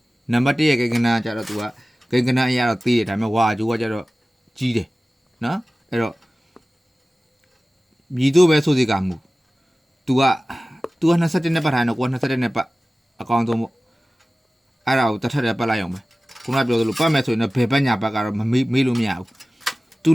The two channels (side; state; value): both; normal; correlation 0.97